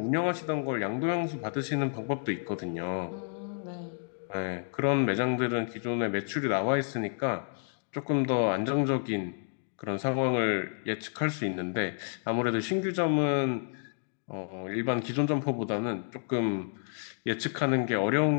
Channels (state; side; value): silent; right; digital silence